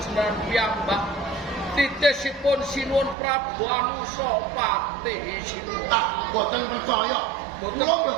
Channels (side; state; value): left; drops out; at 3.2 s